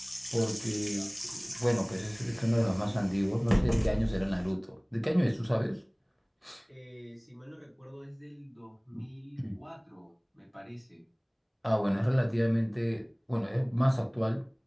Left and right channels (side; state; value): both; identical; correlation 1.00